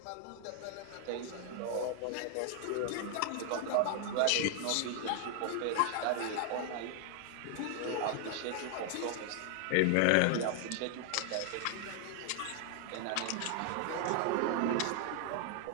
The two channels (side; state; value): both; different; correlation 0.00